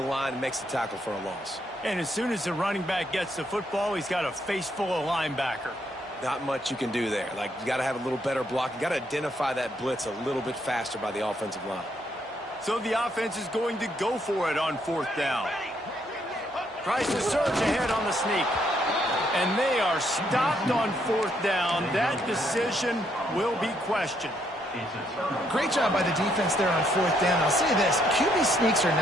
and makes the tackle for a loss. And as soon as the running back gets the football, he's got a face full of linebacker. Not much you can do there. Like, you got to have a little better block. You got to identify that blitz a little bit faster by the offensive line. So the offense is going to go for it on fourth down. Tries to surge ahead on the sneak. And they are stopped on 4th down. That decision will be questioned. Great job by the defense there on 4th down. I'll say this, QB sneaks are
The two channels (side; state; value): both; normal; correlation 0.73